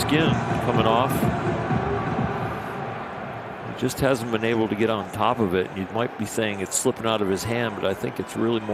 coming off, he just hasn't been able to get on top of it. You might be saying it's slipping out of his hand, but I think it's really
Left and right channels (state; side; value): identical; both; correlation 1.00